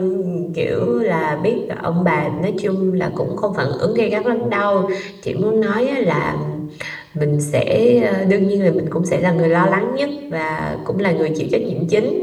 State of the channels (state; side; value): identical; both; correlation 1.00